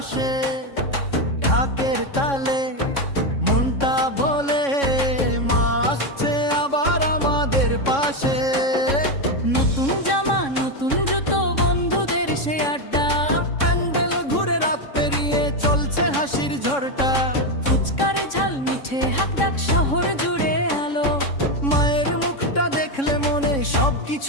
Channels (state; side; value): late; right; 3.6 ms